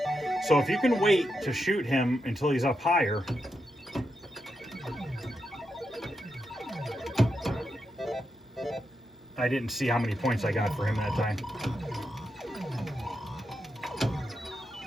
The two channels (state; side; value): normal; both; correlation 0.85